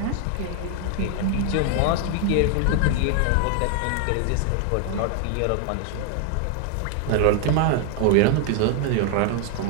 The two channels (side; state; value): both; different; correlation 0.00